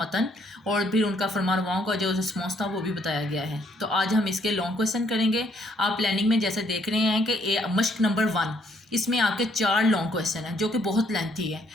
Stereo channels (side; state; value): both; normal; correlation 0.68